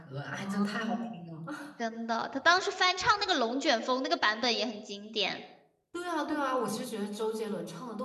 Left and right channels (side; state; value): both; identical; correlation 1.00